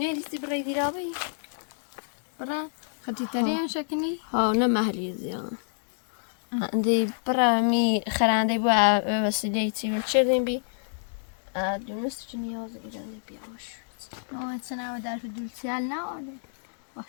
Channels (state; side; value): silent; right; digital silence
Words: برای دیرابی برا خطی ترین شکنی ها نه محلی زیان عندي برا مي خرانده بو وسيلتي وشرين بي دونست جنياز إيراني بيعمش ما سنة ودار في الجبسيال نا ولا